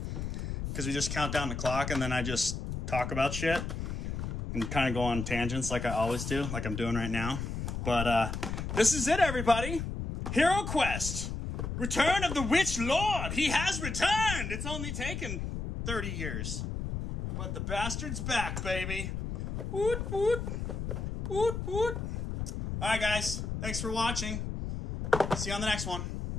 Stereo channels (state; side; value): noise; left; rumble, 4 dB below the sound